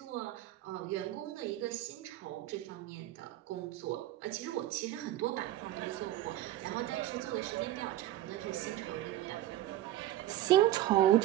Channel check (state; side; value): quieter; left; 14.1 dB